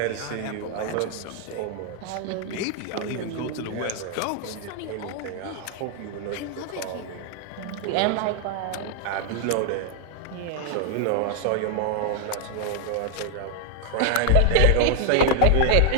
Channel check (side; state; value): both; different; correlation 0.00